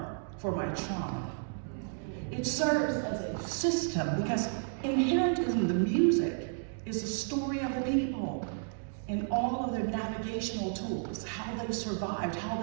for my trauma. It serves as a system because inherent in the music is the story of the people and all of their navigational tools, how they survived, how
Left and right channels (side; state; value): left; silent; digital silence